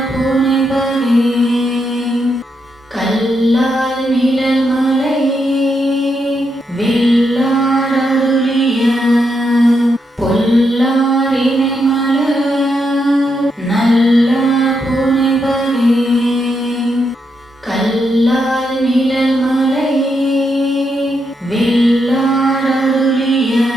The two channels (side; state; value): both; normal; correlation 0.81